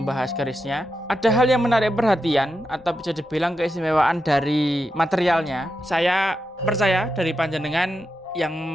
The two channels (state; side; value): normal; both; correlation 0.87